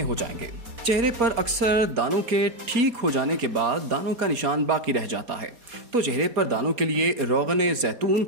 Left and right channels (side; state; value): left; late; 4.2 ms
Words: जाएंगे। चेहरे पर अक्सर दानों के ठीक हो जाने के बाद दानों का निशान बाकी रह जाता है, तो चेहरे पर दानों के लिए रोगने जैतून